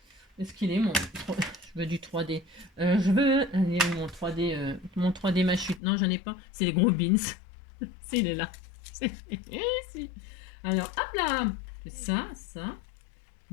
Est-ce qu'il est mon... Je veux du 3D. Je veux... Mon 3D, ma chute. Non, j'en ai pas. C'est les gros beans. Si, il est là. Si. Alors, hop là. Je fais ça.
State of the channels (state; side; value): drops out; right; at 5.8 s